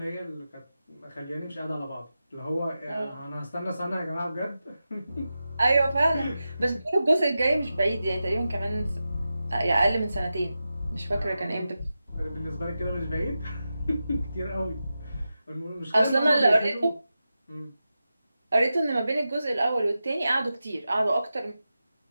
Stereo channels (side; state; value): both; inverted; correlation -0.92